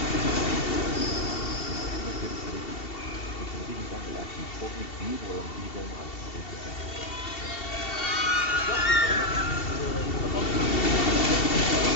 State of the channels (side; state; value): right; late; 2.7 ms